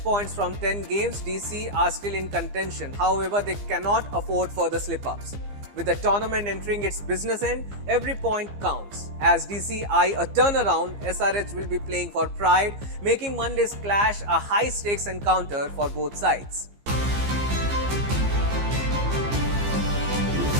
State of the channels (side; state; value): left; late; 15 ms